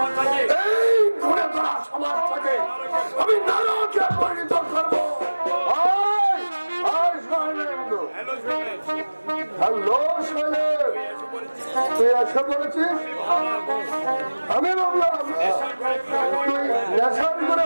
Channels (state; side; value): inverted; both; correlation -1.00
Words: এই ঘুরে ধরা সমাজটাকে আমি নারকে পরিণত করবো। হ্যালো শৈলেন, তুই এসে বলেছিস? আমি ভাবলাম তুই নেশার করে